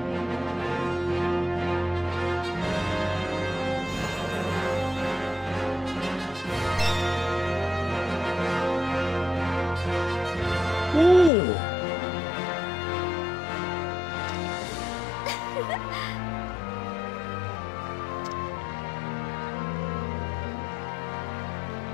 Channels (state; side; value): drops out; right; at 11.3 s